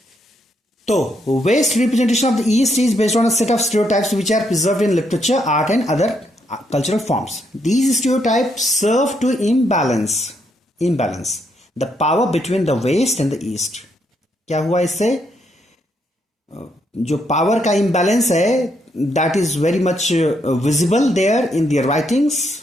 तो West representation of the East is based on a set of stereotypes which are preserved in literature, art and other cultural forms. These stereotypes serve to imbalance the power between the west and the east. क्या हुआ इससे, जो पावर का imbalance है, that is very much visible there in their writings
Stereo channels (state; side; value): normal; both; correlation 0.76